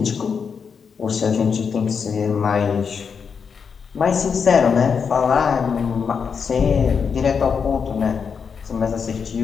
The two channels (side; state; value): right; quieter; 6.2 dB